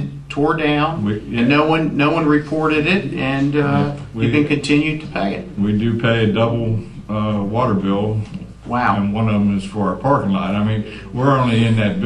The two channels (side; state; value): both; identical; correlation 1.00